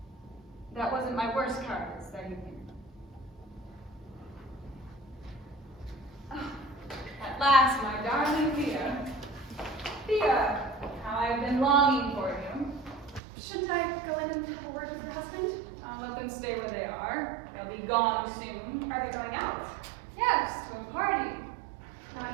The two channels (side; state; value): left; drops out; at 13.2 s